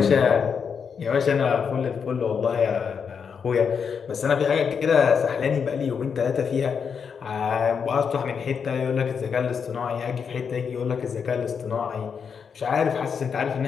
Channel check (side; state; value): right; quieter; 6.5 dB